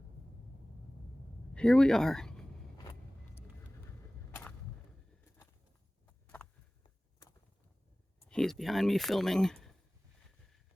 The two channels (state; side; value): normal; both; correlation 0.98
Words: here we are. He's behind me filming